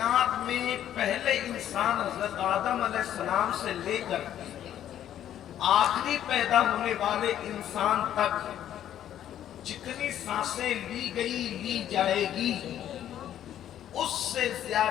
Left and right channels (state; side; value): quieter; right; 11.0 dB